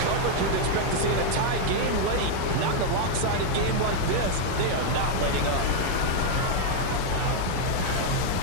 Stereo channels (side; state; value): both; different; correlation 0.00